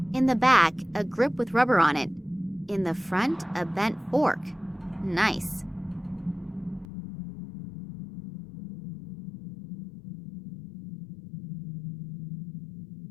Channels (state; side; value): drops out; right; at 6.9 s